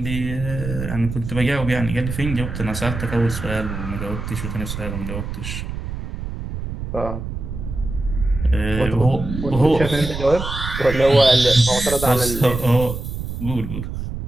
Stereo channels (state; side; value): noise; right; rumble, 6 dB below the sound